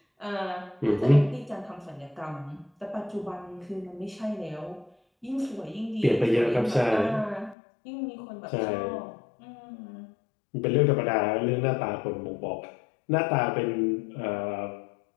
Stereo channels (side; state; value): right; drops out; at 7.6 s